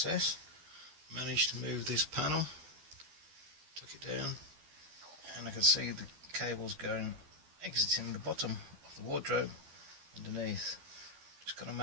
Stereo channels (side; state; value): left; late; 12 ms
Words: Managed to move this panel, took it down, and I can see the cables exiting the bottom of the wardrobe underneath. Just going to